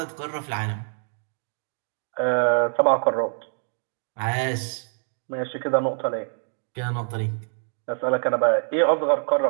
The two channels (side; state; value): left; silent; digital silence